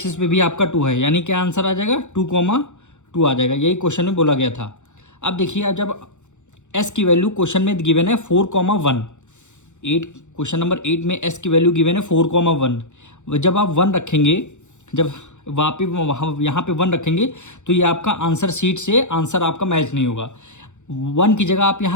पे भी आपका 2 है। यानी क्या आंसर आ जाएगा, 2,2 आ जाएगा। यही क्वेश्चन में बोला गया था। अब देखिए जब S की वैल्यू क्वेश्चन में गिवन है 4,1, 8 क्वेश्चन नंबर 8 में S की वैल्यू गिवन है 4,1। जब आप 1 रखेंगे, जब वहाँ यहाँ पे 1 रखेंगे तो ये आपका आंसर शीट से आंसर आपका मैच नहीं होगा। 1 की जगह आप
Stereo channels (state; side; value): late; right; 0.84 ms